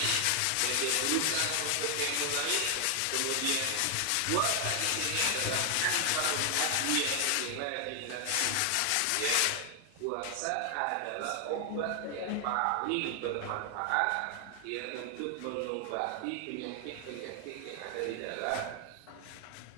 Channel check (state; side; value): different; both; correlation 0.00